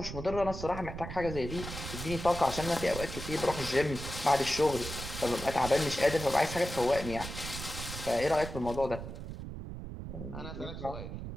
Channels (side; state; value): right; noise; rumble, 8 dB below the sound